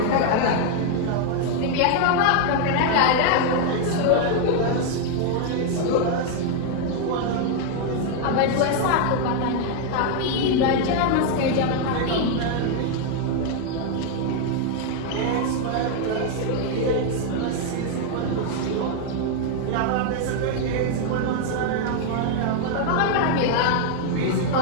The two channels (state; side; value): different; both; correlation 0.00